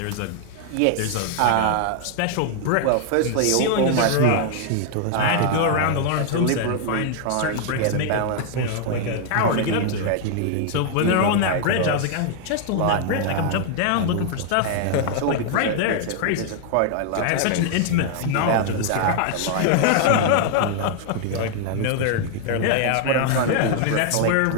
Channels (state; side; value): different; both; correlation 0.00